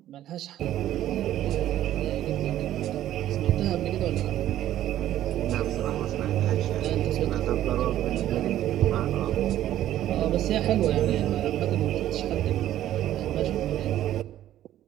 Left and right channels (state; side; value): quieter; left; 12.7 dB